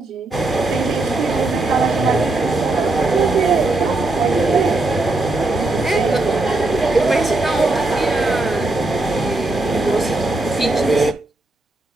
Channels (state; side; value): quieter; left; 3.0 dB